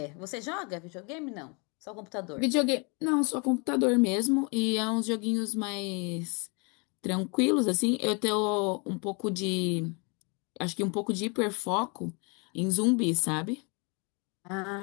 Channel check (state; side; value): quieter; right; 32.9 dB